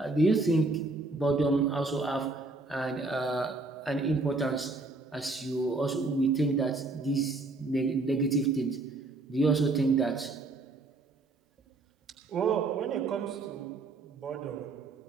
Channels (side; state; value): left; quieter; 3.3 dB